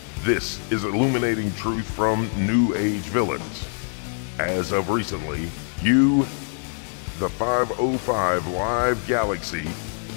This is illuminating truth from New Age villains. As of recently, you, the 505 Live Galaxy,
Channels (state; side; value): silent; right; digital silence